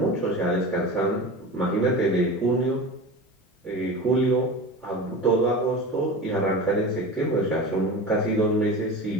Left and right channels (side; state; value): both; normal; correlation 0.30